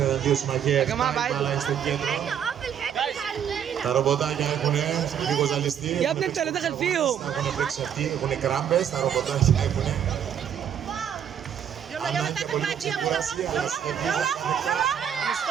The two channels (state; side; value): quieter; left; 8.9 dB